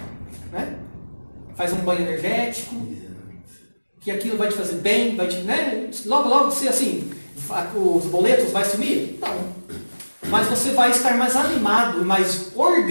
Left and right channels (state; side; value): inverted; both; correlation -1.00